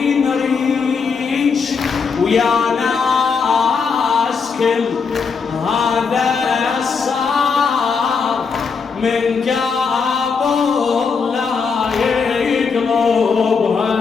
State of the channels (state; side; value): quieter; right; 5.4 dB